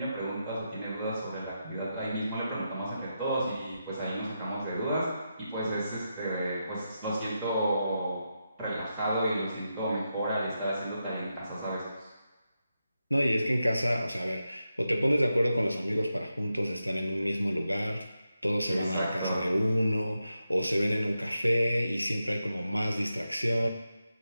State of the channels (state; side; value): inverted; both; correlation -0.87